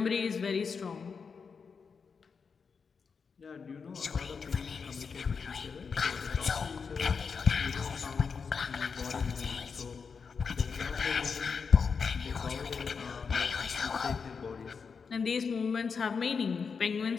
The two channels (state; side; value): quieter; right; 5.6 dB